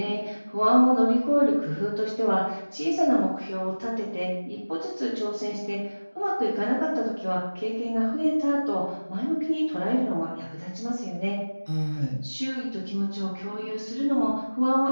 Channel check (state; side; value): inverted; both; correlation -1.00